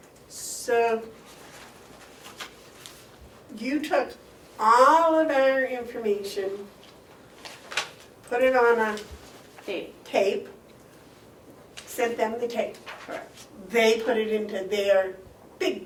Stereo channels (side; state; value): both; identical; correlation 1.00